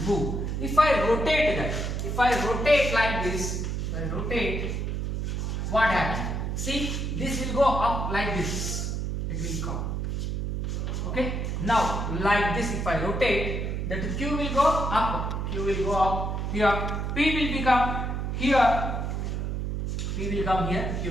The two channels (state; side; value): noise; right; hum, 2 dB below the sound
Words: move. If I rotate that, if I rotate like this, what happens? See, this will go up like this, it will come. Okay, now like this, if I rotate, that Q will go up, here, P will become here, P will come here, Q